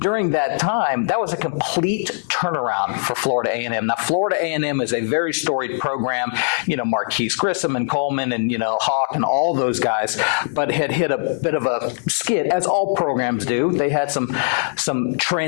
that time, that was a complete turnaround for Florida A&M. Now, Florida A&M is a very storied program, Marquise Grissom and Coleman and, Hawk and all those guys, but had hit a bit of a skid, as all programs do. They had some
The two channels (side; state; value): right; silent; digital silence